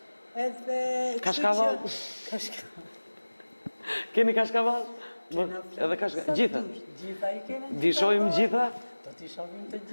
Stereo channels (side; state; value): both; inverted; correlation -1.00